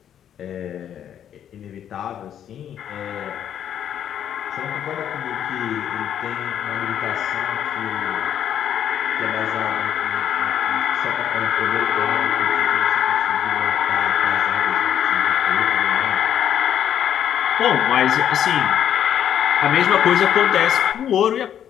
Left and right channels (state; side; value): quieter; right; 9.8 dB